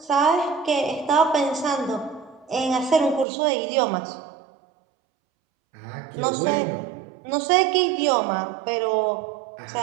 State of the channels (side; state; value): left; drops out; at 3.2 s